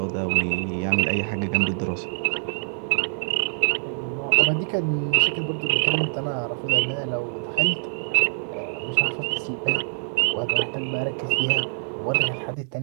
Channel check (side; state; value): left; silent; digital silence